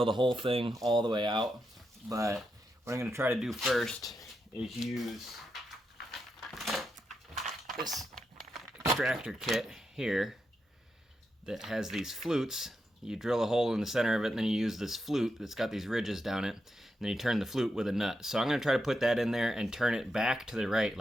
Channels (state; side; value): normal; both; correlation 0.85